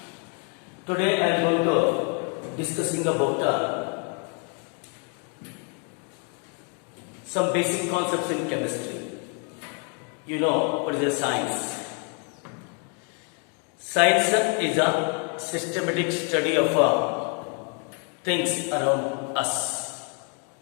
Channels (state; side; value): quieter; right; 39.2 dB